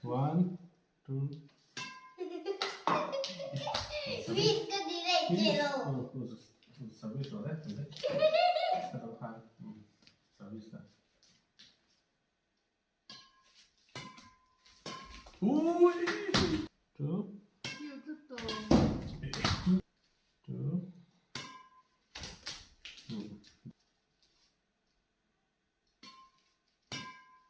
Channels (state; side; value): identical; both; correlation 1.00